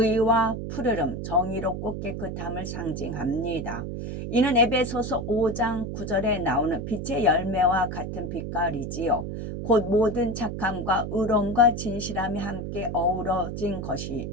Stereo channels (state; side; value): noise; right; hum, 5 dB below the sound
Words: 푸르름, 정의롭고 깨끗함을 상징합니다. 이는 에베소서 5장 9절에 나오는 빛의 열매와 같은 빛깔이지요. 곧 모든 착함과 의로움과 진실함이 함께 어우러진 것이